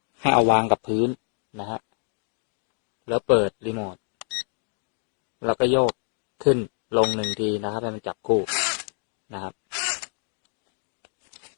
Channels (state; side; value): silent; right; 55 dB below the other